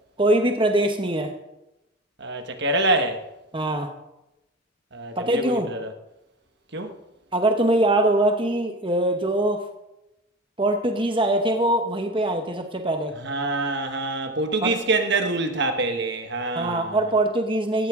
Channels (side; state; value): both; normal; correlation 0.30